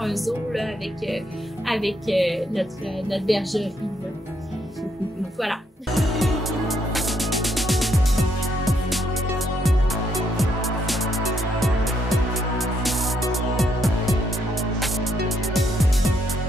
zoo là, avec notre bergerie. Là. Voilà.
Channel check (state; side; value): normal; both; correlation 0.74